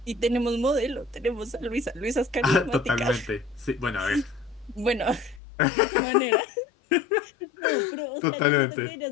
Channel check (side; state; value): right; drops out; at 5.4 s